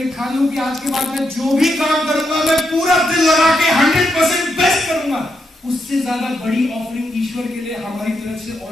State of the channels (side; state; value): both; normal; correlation 0.82